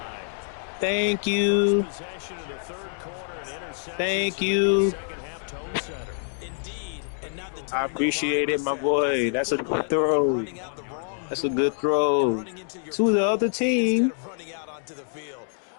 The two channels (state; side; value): silent; right; 61 dB below the other